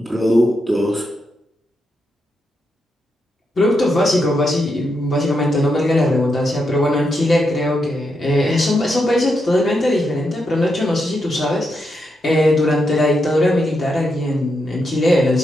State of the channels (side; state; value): both; normal; correlation 0.83